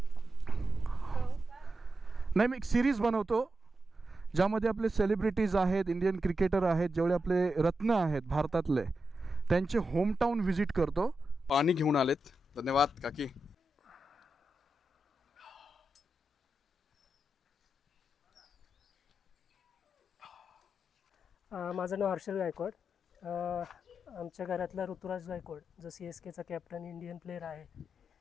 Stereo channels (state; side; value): normal; both; correlation 0.89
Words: नाही, मी एक सिरीज बनवतो ज्यामध्ये आपले सेलिब्रिटीज आहेत, इंडियन क्रिकेटर आहेत, जेवढे आपले रत्न आहेत भारतातले, त्यांचे होमटाऊन व्हिजिट करतो. पाणी घेऊन आलेत. धन्यवाद काकी. माझं नाव हर्षल गायकवाड. आमच्या घरातला ऋतुराज गायकवाड जो CSKचा कॅप्टन इंडियन प्लेयर आहे,